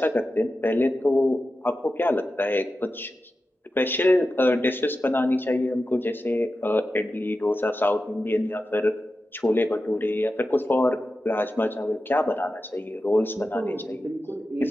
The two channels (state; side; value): normal; both; correlation 0.92